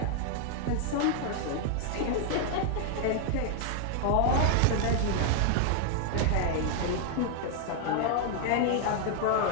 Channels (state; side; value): different; both; correlation 0.00